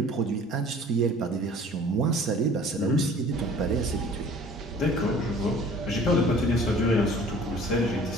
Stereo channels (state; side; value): normal; both; correlation 0.49